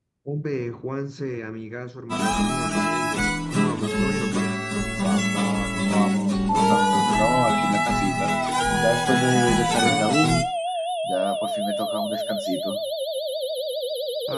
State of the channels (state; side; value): identical; both; correlation 1.00